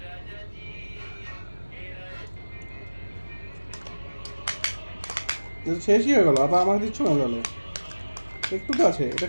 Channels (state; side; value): inverted; both; correlation -1.00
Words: শেষই হয়ে গেলো, আবার আমাকে দিচ্ছ না গেলো? একটু তো আছে, এটা